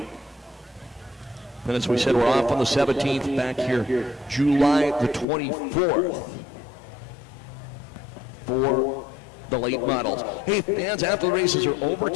And as we said, we're off on the 17th, back here July the 24th for the late models. Hey, fans, after the races are over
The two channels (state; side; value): drops out; right; at 5.2 s